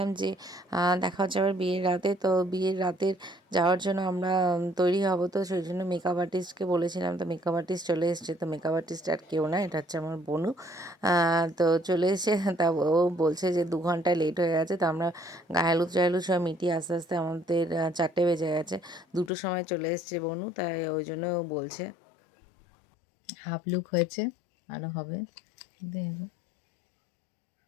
যে দেখা হচ্ছে আবার বিয়ের রাতে। তো বিয়ের রাতের যাওয়ার জন্য আমরা তৈরি হব, তো সেই জন্য মেকআপ আর্টিস্টকে বলেছিলাম। তো মেকআপ আর্টিস্ট চলে এসছে। তো মেকআপ আর্টিস্ট আর কেউ না, এটা হচ্ছে আমার বোনু। তো চলে এসে তা ও বলছে যে 2 ঘন্টা লেট হয়ে গেছে। তো আমরা গায়ে হলুদ টাহলুদ সব মিটিয়ে আস্তে আস্তে আমাদের 4টে বেজে গেছে। 2টোর সময় চলে এসছে বোনু, তাই ওই জন্য ও বলছে। হাফ লুক হয়েছে, আরও হবে।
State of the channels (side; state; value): right; drops out; at 19.3 s